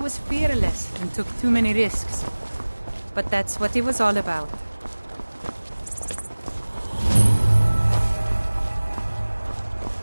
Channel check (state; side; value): inverted; both; correlation -1.00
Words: fearless and took too many risks. But that's what it was all about.